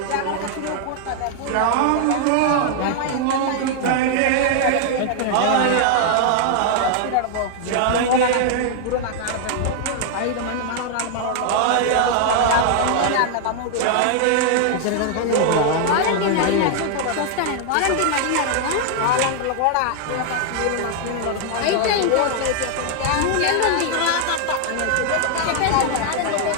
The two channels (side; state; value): both; different; correlation 0.00